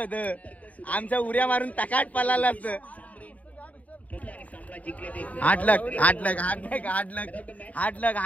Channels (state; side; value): late; right; 0.071 ms